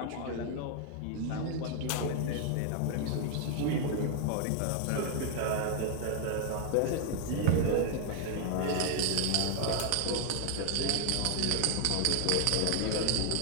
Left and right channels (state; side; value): different; both; correlation 0.00